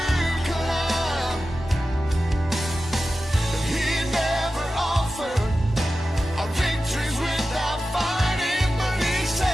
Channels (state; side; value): normal; both; correlation 0.93